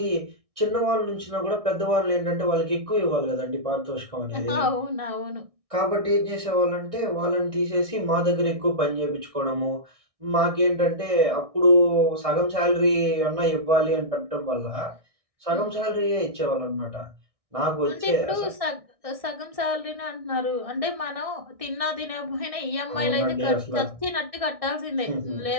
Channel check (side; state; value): left; late; 1.6 ms